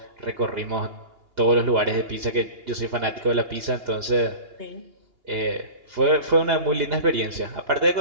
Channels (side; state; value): left; late; 2.8 ms